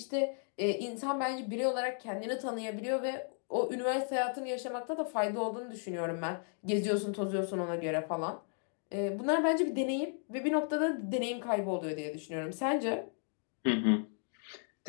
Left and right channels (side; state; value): right; silent; 55 dB below the other